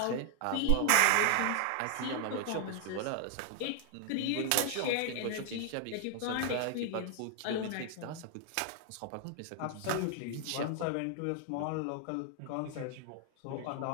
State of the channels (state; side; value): different; both; correlation 0.00